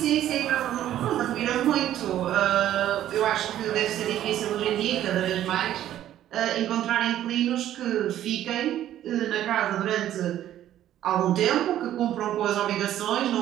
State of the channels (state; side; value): quieter; left; 12.1 dB